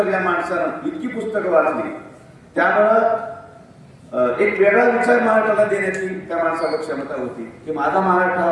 या माणसानं इतकी पुस्तकं वाचली, त्यामुळं एक वेगळा विचार महाराष्ट्राला देण्याची त्या माणसाला क्षमता होती की माझा महाराष्ट्र हा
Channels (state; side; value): identical; both; correlation 1.00